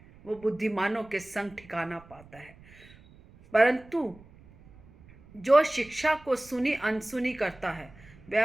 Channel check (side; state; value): right; noise; rumble, 24 dB below the sound